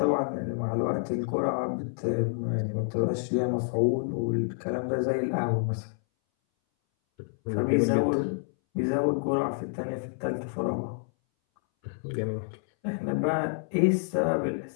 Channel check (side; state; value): right; silent; 59 dB below the other